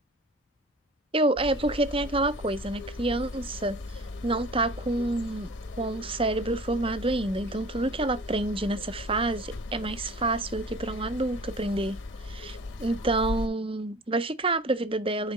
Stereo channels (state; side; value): normal; both; correlation 0.43